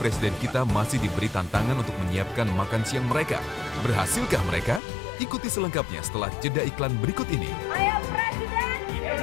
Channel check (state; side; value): drops out; right; at 4.8 s